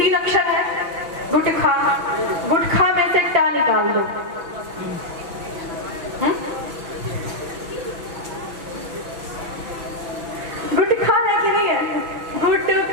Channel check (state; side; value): late; left; 6.0 ms